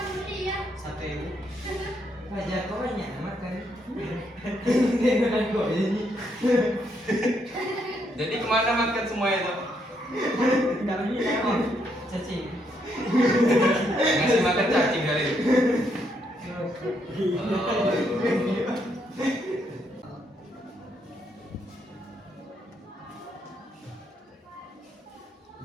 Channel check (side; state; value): both; normal; correlation 0.75